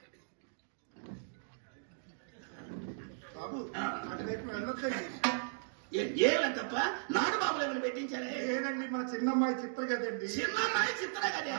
బాబు అటువైపు వెళ్ళొద్దండి ఏమని తప్ప నాటు బాబులు ఏమైనా పెట్టించారే లేదండి మా చిన్నమ్మాయి చిత్ర కదండి చిన్నమ్మాయి చిత్ర కదా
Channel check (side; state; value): left; silent; digital silence